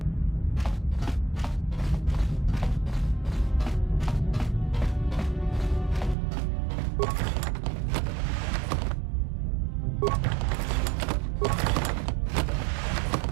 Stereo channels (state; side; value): drops out; left; at 6.2 s